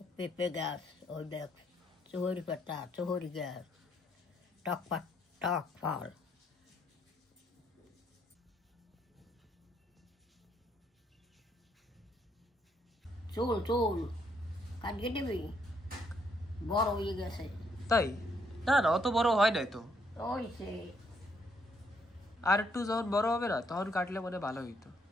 পেঁপে গাছ, ওই দেখ চুহরি পাতা, চুহরি গাছ, টক ফল। চুল কাটিয়ে দিবি, বড় হয়ে গেছে। তাই? না না অত বড় হয় নাই তো। ওইছে আর একটু যখন বড় হবে না তখন কাটলে মনে ভালো হইতো।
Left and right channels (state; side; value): normal; both; correlation 0.72